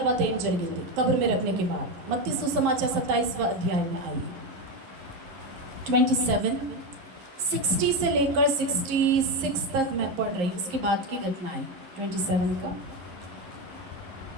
ఏం జరిగింది कब्र में रखने के बाद। मत्ती सुसमाचार 27वां अध्याय में आइए। 27 60 से लेकर 66 तक मैं पढ़ रही हूँ, उसके बाद की घटना है 27 का।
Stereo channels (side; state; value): left; late; 11 ms